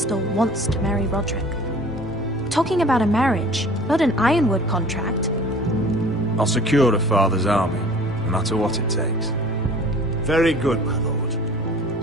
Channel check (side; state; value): both; normal; correlation 0.46